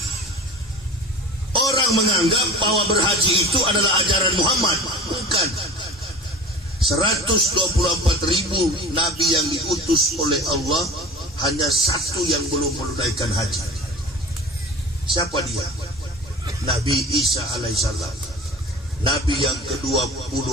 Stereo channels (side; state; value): both; normal; correlation 0.38